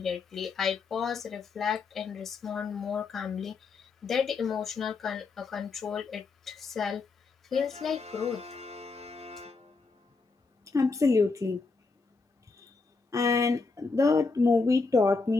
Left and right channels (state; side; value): quieter; right; 4.2 dB